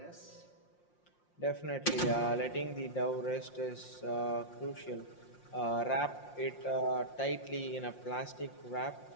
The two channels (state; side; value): late; right; 5.7 ms